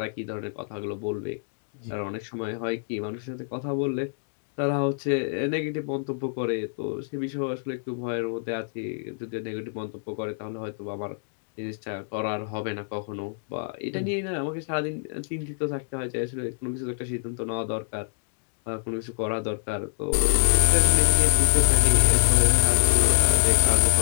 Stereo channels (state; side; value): silent; right; digital silence